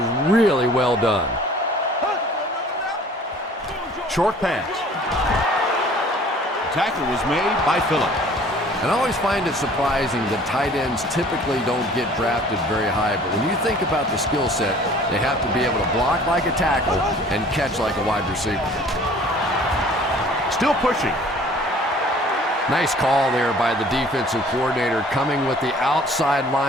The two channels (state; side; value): normal; both; correlation 0.51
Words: really well done. Short pass. Tackle was made by Phillip. And I always find it surprising that tight ends typically don't get drafted very high, but when you think about the skill set, they have to be able to block like a tackle and catch like a wide receiver. Still pushing. Nice call there by the defensive coordinator, coming with the outside